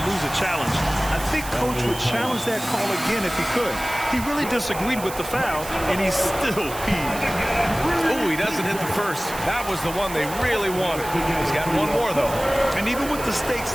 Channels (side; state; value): right; noise; hiss, 12 dB below the sound